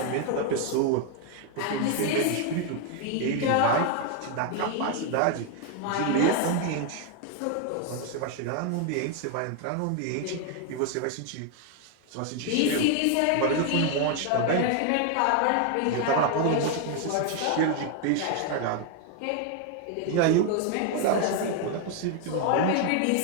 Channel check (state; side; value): different; both; correlation 0.01